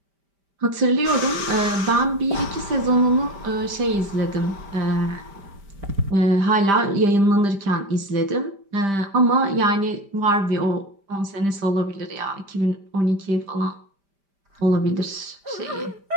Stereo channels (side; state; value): left; late; 5.1 ms